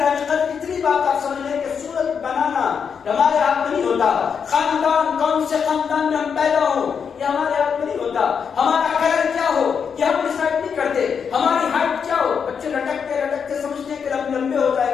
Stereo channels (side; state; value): right; quieter; 6.7 dB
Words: قدر، اتنی بات آپ سمجھ لیں کہ صورت بنانا ہمارے ہاتھ میں نہیں ہوتا. خاندان کون سے خاندان میں ہم پیدا ہوں یہ ہمارے ہاتھ میں نہیں ہوتا. ہمارا کلر کیا ہو یہ ہم ڈیسائیڈ نہیں کرتے. ہماری ہائٹ کیا ہو، بچے لٹکتے لٹکتے سمجھتے ہیں کہ لمبے ہو